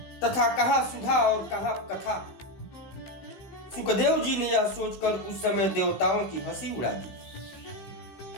तथा कहाँ सुधा और कहाँ कथा। सुखदेव जी ने यह सोचकर उस समय देवताओं की हंसी उड़ा दी।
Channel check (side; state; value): right; late; 16 ms